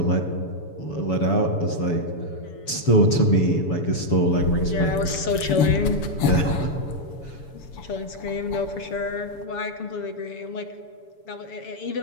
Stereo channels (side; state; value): right; late; 7.0 ms